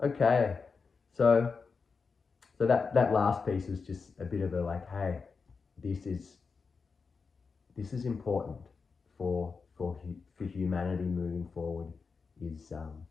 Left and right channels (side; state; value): right; quieter; 5.0 dB